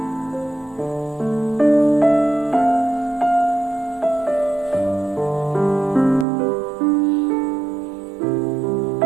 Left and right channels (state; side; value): drops out; left; at 6.2 s